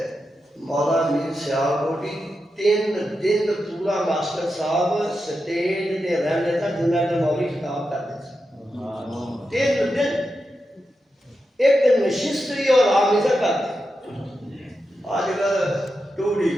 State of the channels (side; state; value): both; normal; correlation 0.88